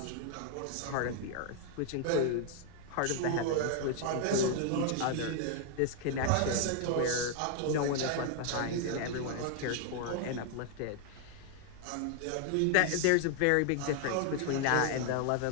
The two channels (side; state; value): both; different; correlation 0.00